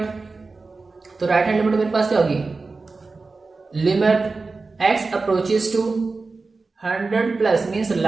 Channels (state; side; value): quieter; left; 3.9 dB